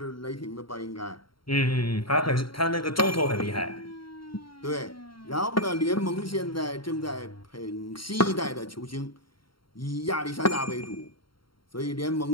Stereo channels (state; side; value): late; right; 0.73 ms